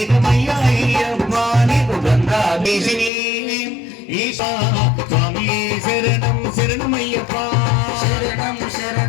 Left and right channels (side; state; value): right; drops out; at 3.1 s